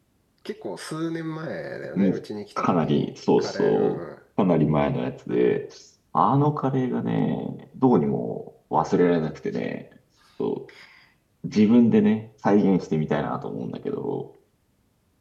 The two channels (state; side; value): identical; both; correlation 1.00